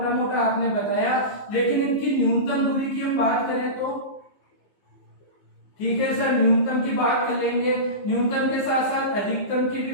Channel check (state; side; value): late; right; 15 ms